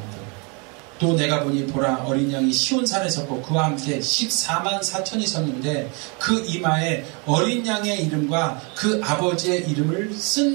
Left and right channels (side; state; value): left; quieter; 32.6 dB